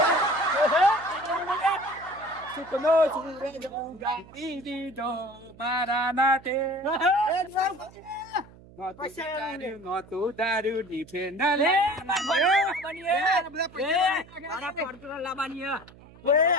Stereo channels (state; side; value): noise; right; hum, 22 dB below the sound